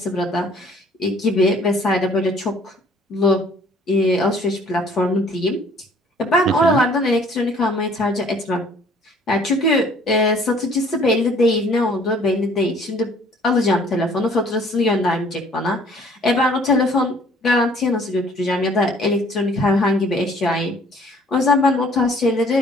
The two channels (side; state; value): both; normal; correlation 0.56